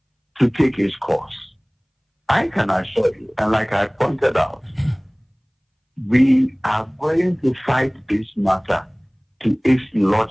to take its course. I can assure you, and like I pointed out, we are going to fight this matter to its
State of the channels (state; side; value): identical; both; correlation 1.00